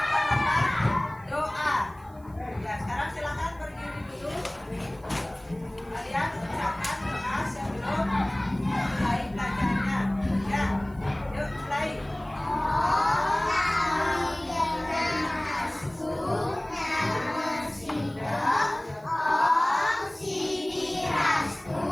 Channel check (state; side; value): noise; right; hiss, 30 dB below the sound